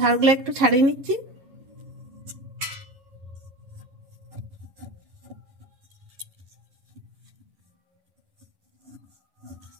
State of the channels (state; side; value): late; left; 11 ms